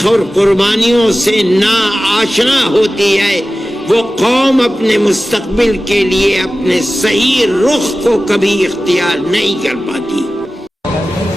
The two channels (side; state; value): both; normal; correlation 0.95